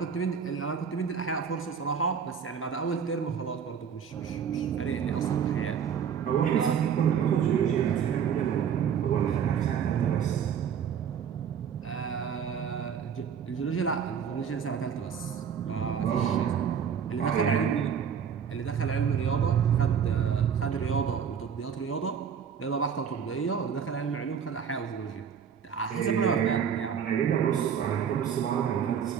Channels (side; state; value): left; quieter; 7.5 dB